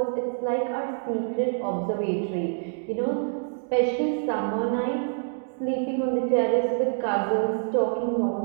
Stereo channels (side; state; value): left; silent; digital silence